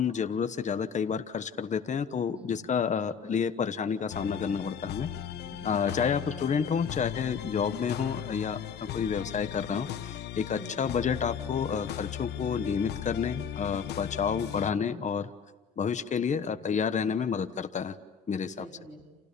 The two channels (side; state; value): right; quieter; 6.6 dB